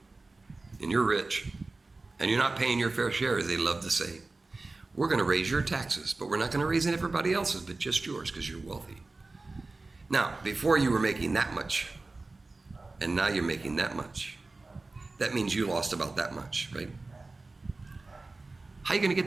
and you're rich and you're not paying your fair share, as they love to say, we're going to raise your taxes, but we're not going to raise everybody else's, but just yours because you're wealthy. Now, before you were making that much, and now you're making that much. That means you lost about that much, right? How are you going to get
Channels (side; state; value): left; quieter; 3.4 dB